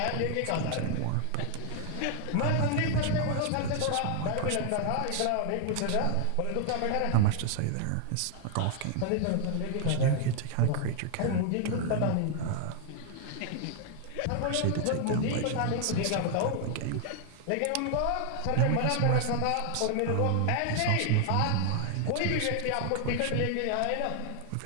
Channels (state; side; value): different; both; correlation 0.00